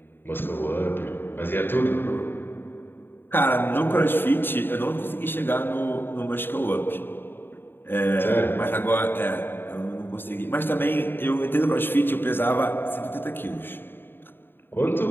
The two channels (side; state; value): right; late; 0.099 ms